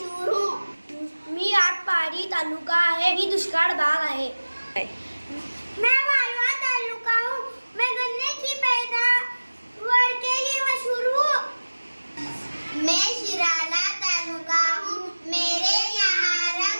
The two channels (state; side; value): inverted; both; correlation -1.00